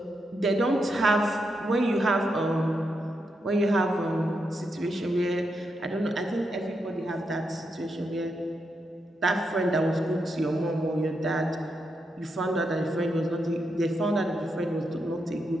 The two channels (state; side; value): normal; both; correlation 0.83